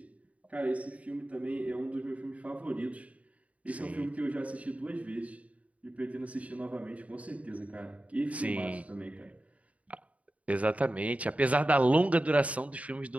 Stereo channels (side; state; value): left; late; 0.067 ms